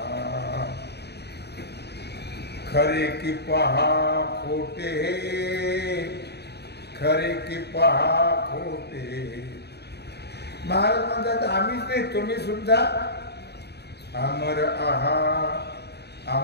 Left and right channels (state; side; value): late; right; 0.48 ms